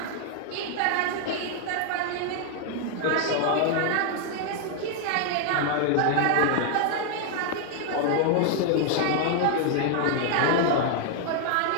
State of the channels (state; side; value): different; both; correlation 0.00